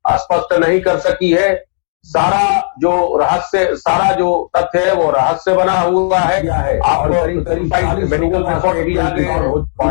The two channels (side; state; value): right; silent; digital silence